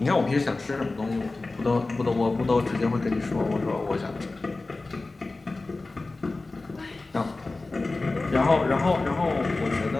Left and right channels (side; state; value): right; quieter; 3.4 dB